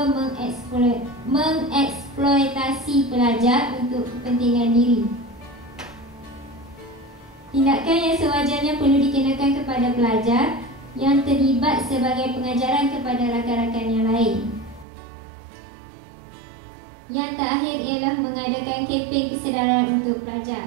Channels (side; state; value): left; drops out; at 14.9 s